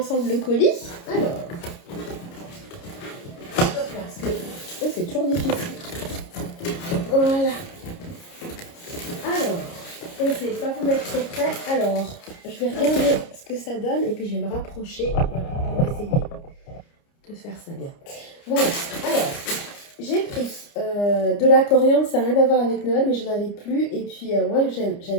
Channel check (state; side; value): late; right; 29 ms